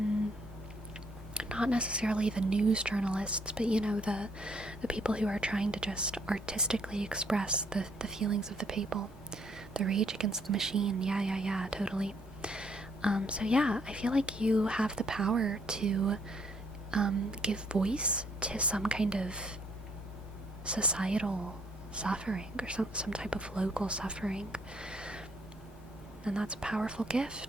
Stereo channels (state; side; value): normal; both; correlation 0.67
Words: Not necessarily the news journalists, but you know, the people who are trying to just artistically express the feelings of the people. The rage against the machine. Yeah, totally. So yeah, I feel like you have the power to give voice to some kind of societal suffering, or some type of local suffering. And that's a powerful